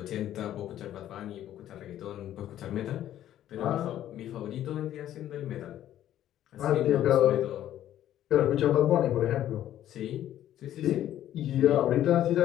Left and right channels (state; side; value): quieter; right; 12.1 dB